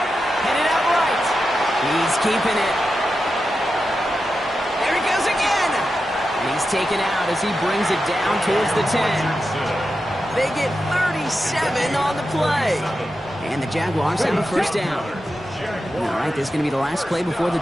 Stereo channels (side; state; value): both; normal; correlation 0.89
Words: out right. He's keeping it. There he goes again. And he's taken out as he brings it down towards the 10. They get 37 on the play. And the Jaguars have a first down. All right, this is going to be the last play before the